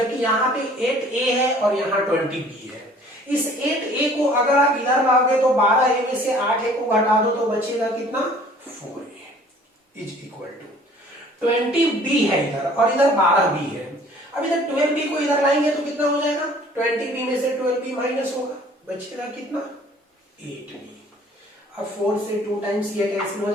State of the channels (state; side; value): normal; both; correlation 0.53